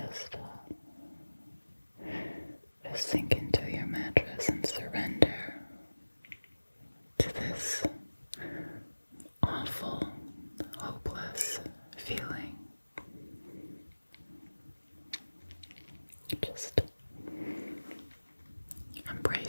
sink into your mattress and surrender to this awful, hopeless feeling. Just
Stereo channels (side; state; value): both; inverted; correlation -1.00